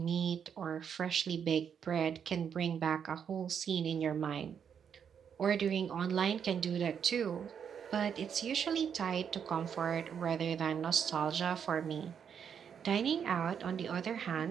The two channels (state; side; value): quieter; left; 7.7 dB